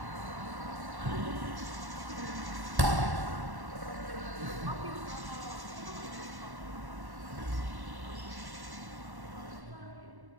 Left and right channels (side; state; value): left; late; 1.1 ms